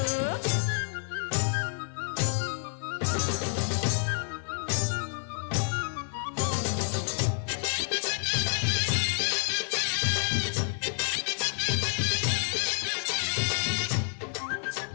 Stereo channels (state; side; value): silent; right; 56 dB below the other